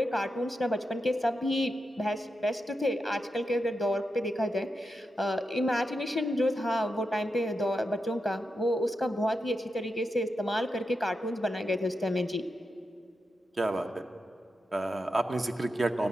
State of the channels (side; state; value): both; normal; correlation 0.87